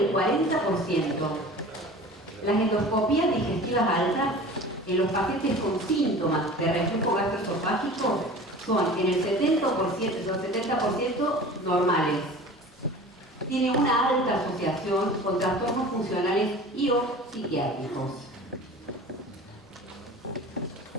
40%. Las endoscopías digestivas altas en los pacientes con síntomas de reflujo gastroesofágico son en el 70% normales. Tiene una alta asociación con trastornos funcionales y o psiquiátricos.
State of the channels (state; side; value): normal; both; correlation 0.40